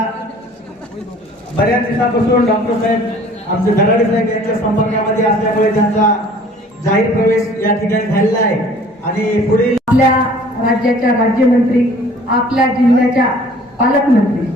बऱ्याच दिवसापासून डॉक्टर साहेब आमचे धडाडे साहेब यांच्या संपर्कामध्ये असल्यामुळे त्यांचा जाहीर प्रवेश या ठिकाणी झालेला आहे। आणि पुढील आपल्या राज्याच्या राज्यमंत्री, आपल्या जिल्ह्याच्या पालकमंत्री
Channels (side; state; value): both; normal; correlation 0.52